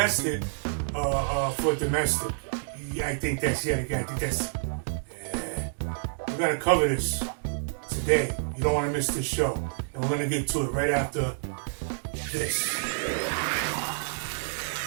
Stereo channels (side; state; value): left; silent; 59 dB below the other